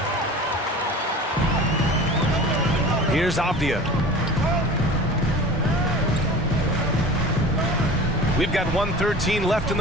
Here's Avdia. We've got 1:13 left in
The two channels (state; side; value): normal; both; correlation 0.38